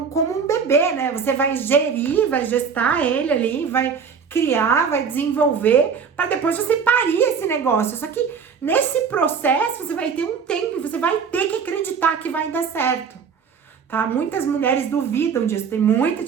um bebê, né? Você vai gerir, vai gestar ele ali, vai criar, vai desenvolver, para depois você parir esse negócio. Só que nesse processo você vai ter um tempo e você vai ter que acreditar que vai dar certo. Tá? Muitas mulheres duvidam disso, tem muita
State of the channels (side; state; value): left; quieter; 6.3 dB